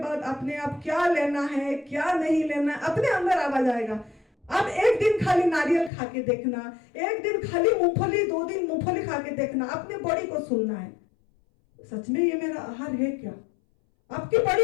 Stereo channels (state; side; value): drops out; right; at 5.9 s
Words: अपने आप क्या लेना है क्या नहीं लेना है अपने अंदर आवाज आएगा। अब एक दिन खाली नारियल खा के देखना, एक दिन खाली मूंगफली, 2 दिन मूंगफली खा के देखना, अपने बॉडी को सुनना है सच में ये मेरा आहार है क्या। आपकी